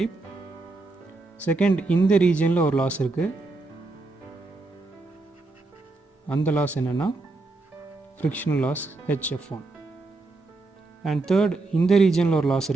Second, இந்த ரீஜனில் ஒரு லாஸ் இருக்குது, அந்த லாஸ் என்னென்னா frictional loss HF1. And third, இந்த ரீஜனில் ஒரு லாஸ்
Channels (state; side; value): quieter; left; 3.3 dB